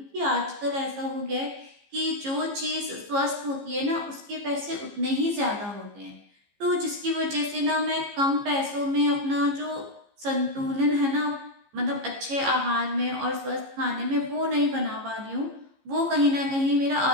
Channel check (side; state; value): left; late; 15 ms